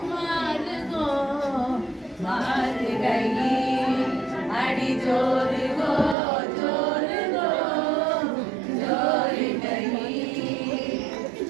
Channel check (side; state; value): left; drops out; at 6.2 s